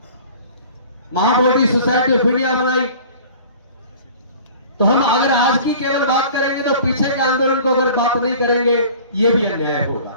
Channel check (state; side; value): inverted; both; correlation -0.45